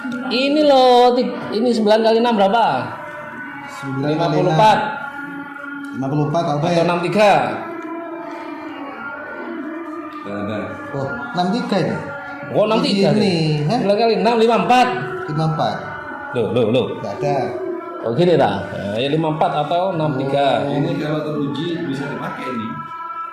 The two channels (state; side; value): identical; both; correlation 1.00